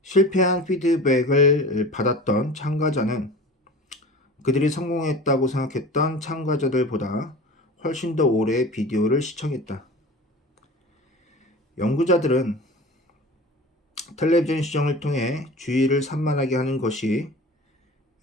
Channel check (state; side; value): normal; both; correlation 0.37